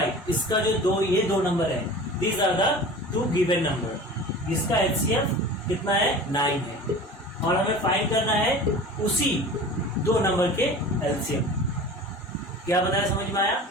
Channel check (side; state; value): both; normal; correlation 0.38